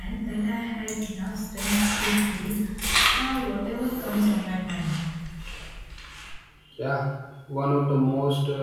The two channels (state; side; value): identical; both; correlation 1.00